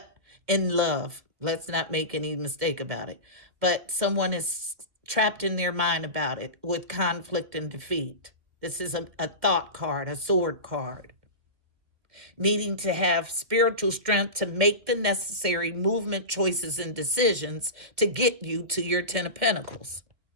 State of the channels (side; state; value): left; late; 2.2 ms